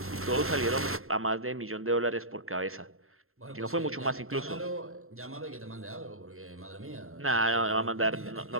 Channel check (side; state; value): left; late; 0.62 ms